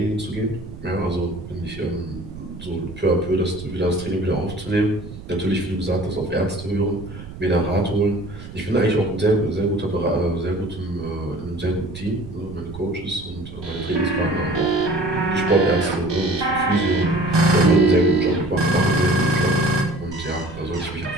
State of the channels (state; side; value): noise; right; rumble, 13 dB below the sound